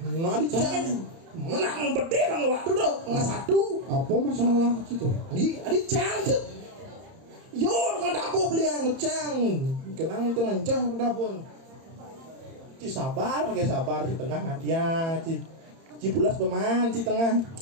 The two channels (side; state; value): left; late; 30 ms